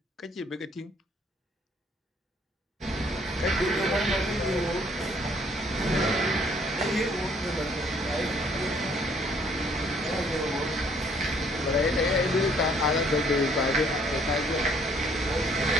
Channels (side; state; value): both; normal; correlation 0.63